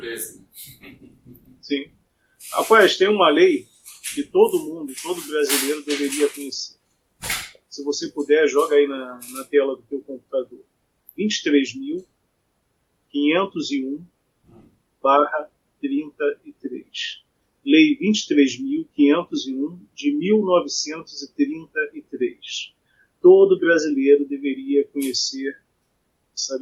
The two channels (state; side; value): identical; both; correlation 1.00